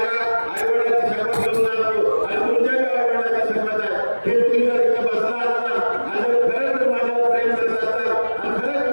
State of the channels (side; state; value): both; inverted; correlation -1.00